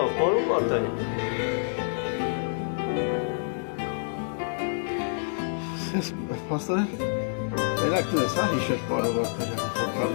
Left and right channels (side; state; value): right; silent; digital silence